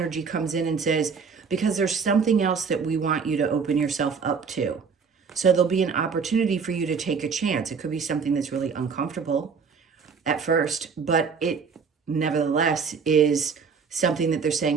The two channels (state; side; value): quieter; left; 5.7 dB